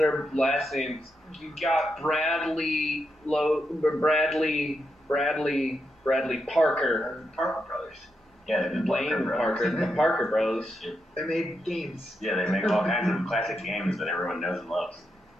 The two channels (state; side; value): normal; both; correlation 0.84